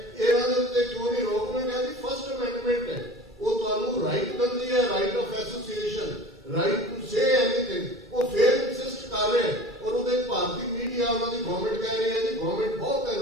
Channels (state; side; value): normal; both; correlation 0.40